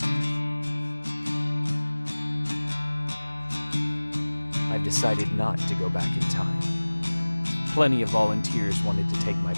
I've decided not to go back in time. Plenty of volunteers wanted to take my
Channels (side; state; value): both; inverted; correlation -1.00